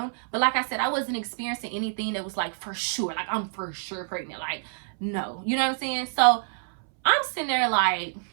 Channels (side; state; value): left; silent; 60 dB below the other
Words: but like I said, I wasn't experiencing anything that was like for sure, like I'm for sure pregnant. Like, no, you know what I'm saying? So I'm sitting there like,